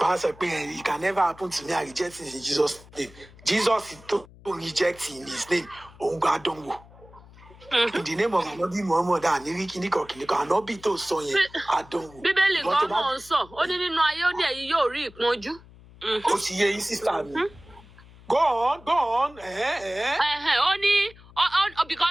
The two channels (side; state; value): left; noise; hum, 22 dB below the sound